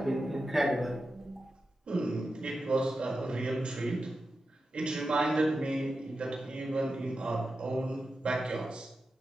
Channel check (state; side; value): normal; both; correlation 0.91